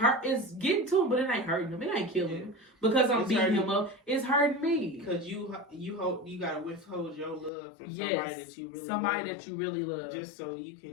getting to him, but it ain't hurting him. It ain't killing him because I'm beating him up. It's hurting me. Because you gotta withhold your love from somebody that you really love, just so you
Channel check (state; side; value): drops out; right; at 7.5 s